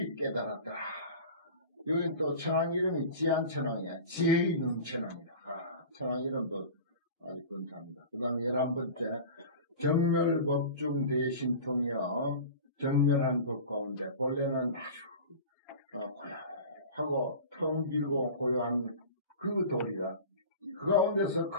깨달았다. 여기 또 천왕 이름이 지안천왕이야. 지혜의 능천왕이다. 천왕 이름도 아주 근사합니다. 그 다음에 11번째, 정멸법중 대신통이여, 정멸한 법 가운데, 본래는 아주, 고요하고, 텅 길고 고요한 그 돌이다. 그 가운데서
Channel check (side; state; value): both; inverted; correlation -0.35